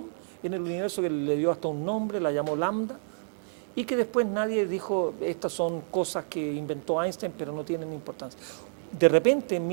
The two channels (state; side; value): silent; left; 59 dB below the other